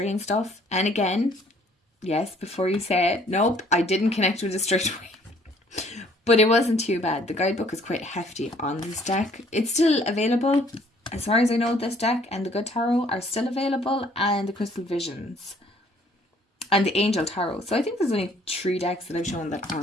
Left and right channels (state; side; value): normal; both; correlation 0.60